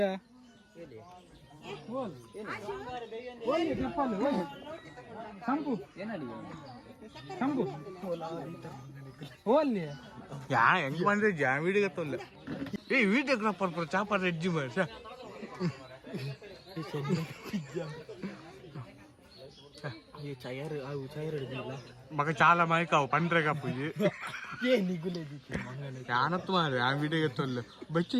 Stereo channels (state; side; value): identical; both; correlation 1.00